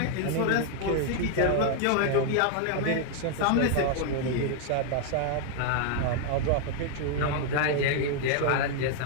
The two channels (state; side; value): different; both; correlation 0.00